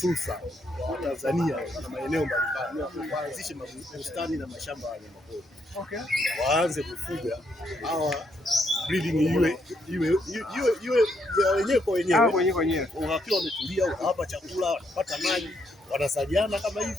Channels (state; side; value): normal; both; correlation 0.75